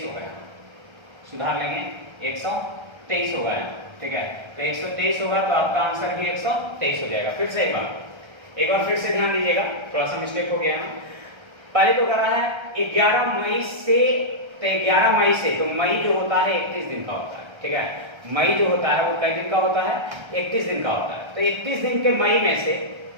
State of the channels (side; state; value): left; late; 1.3 ms